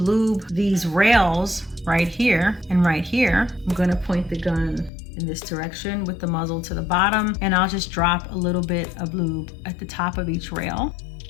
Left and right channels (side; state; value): right; drops out; at 4.9 s